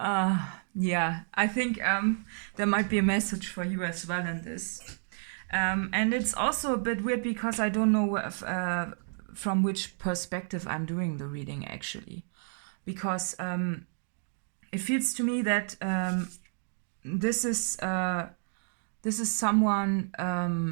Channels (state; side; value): silent; left; digital silence